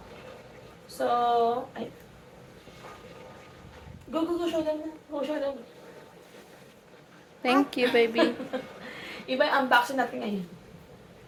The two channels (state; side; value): identical; both; correlation 1.00